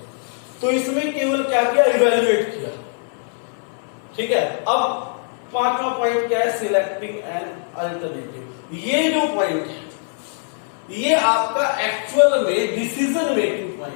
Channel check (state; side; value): silent; right; 59 dB below the other